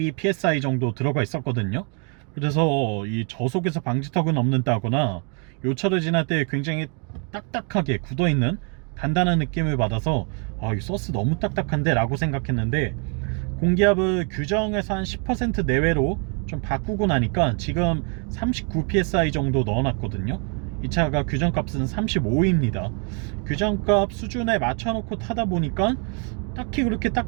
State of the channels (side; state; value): left; quieter; 37.7 dB